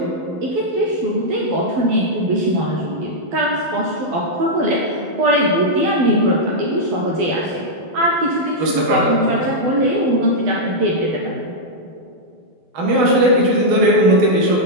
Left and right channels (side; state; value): left; late; 12 ms